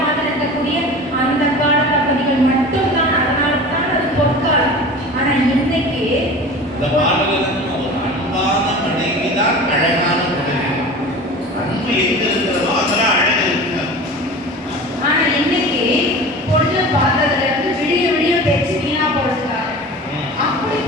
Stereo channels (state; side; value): normal; both; correlation 0.36